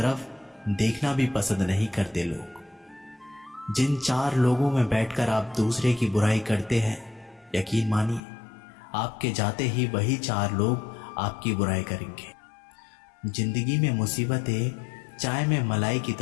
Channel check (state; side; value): drops out; right; at 8.2 s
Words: देखना भी पसंद नहीं करते लोग। जिन 4 लोगों में बैठकर आप दूसरे की बुराई करते हैं, यकीन मानिए आपके जाते ही वही 4 लोग आपकी बुराई करेंगे। जिंदगी में मुसीबतें चाय में मलाई की